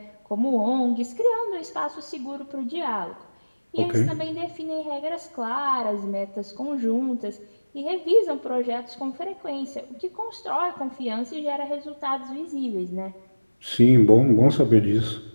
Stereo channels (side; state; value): both; inverted; correlation -1.00